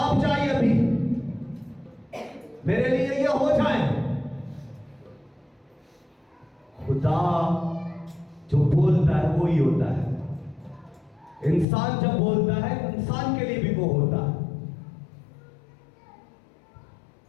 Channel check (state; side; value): drops out; right; at 11.7 s